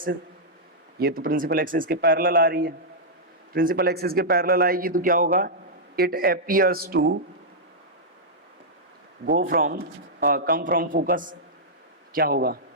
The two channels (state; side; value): normal; both; correlation -0.09